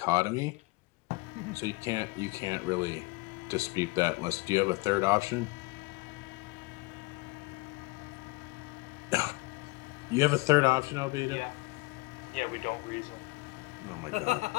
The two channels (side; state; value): right; quieter; 23.6 dB